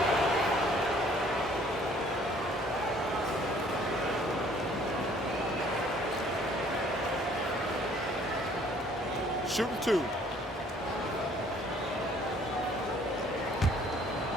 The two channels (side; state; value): both; normal; correlation 0.58